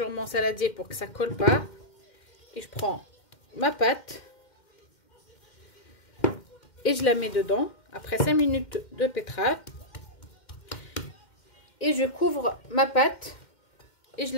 mon saladier pour que ça ne colle pas. Et je prends ma pâte et je la mets dedans après 5 minutes de pétrage. Et je couvre ma pâte et je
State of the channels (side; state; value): right; late; 2.1 ms